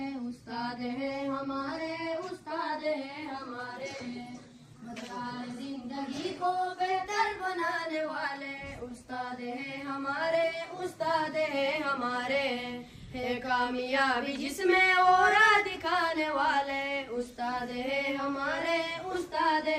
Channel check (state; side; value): identical; both; correlation 1.00